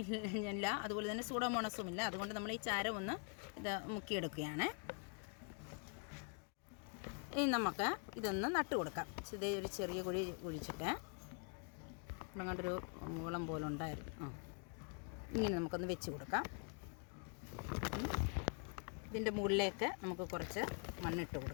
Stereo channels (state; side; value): quieter; right; 37.5 dB